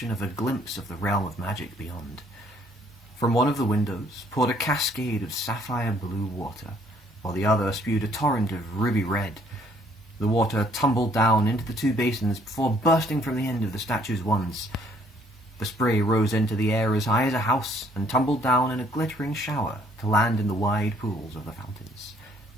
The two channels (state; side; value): normal; both; correlation 0.63